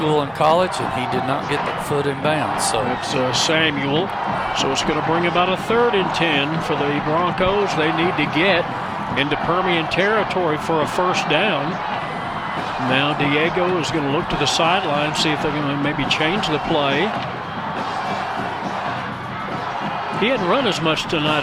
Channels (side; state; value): both; identical; correlation 1.00